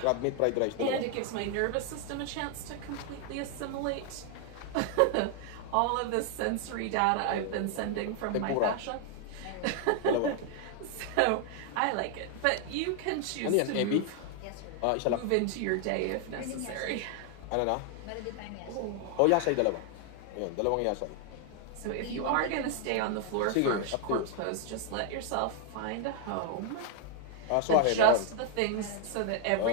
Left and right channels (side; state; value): both; different; correlation 0.00